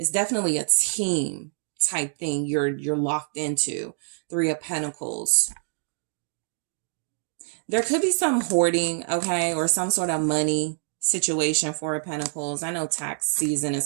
definitely a team type thing you're locked into. Three of Pentacles. There could be some hoarding, okay, or some sort of money situation. Four of Pentacles. I know tax season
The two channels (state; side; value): silent; left; digital silence